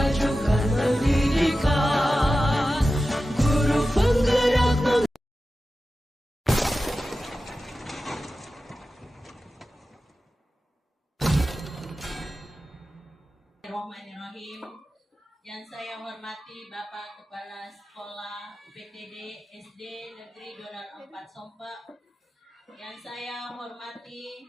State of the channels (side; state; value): both; normal; correlation 0.94